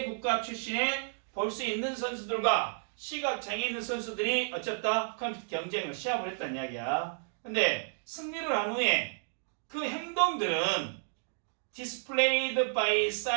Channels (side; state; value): left; silent; digital silence